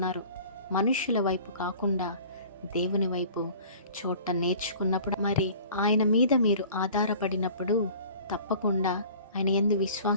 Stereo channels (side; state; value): both; inverted; correlation -0.46